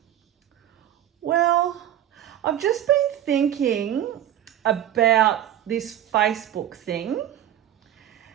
well, I've just been thinking about this Facebook thing.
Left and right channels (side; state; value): left; quieter; 11.6 dB